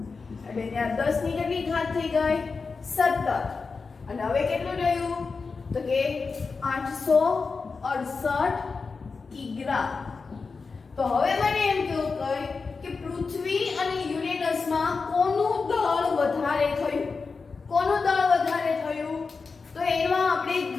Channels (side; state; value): right; quieter; 4.6 dB